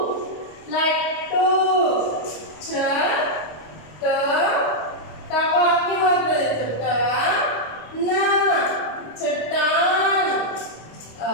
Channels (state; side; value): late; right; 26 ms